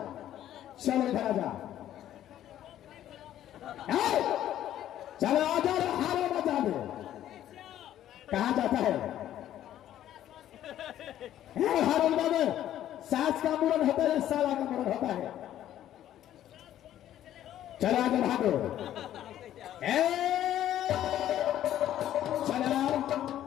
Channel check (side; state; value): right; quieter; 12.0 dB